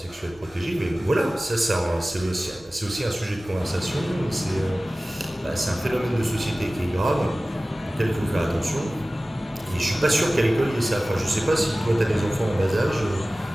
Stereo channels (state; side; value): normal; both; correlation 0.97